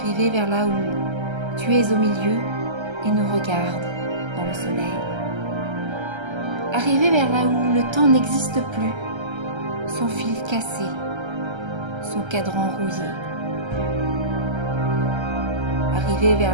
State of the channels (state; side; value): late; left; 1.3 ms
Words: vers là où tu es au milieu et nous regardes dans le soleil. Arriver vers là où le temps n'existe plus, son fil cassé, son cadran rouillé. Arriver